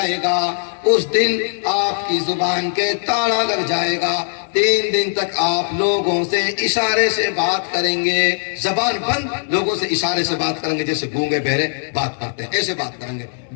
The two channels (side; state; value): right; silent; 66 dB below the other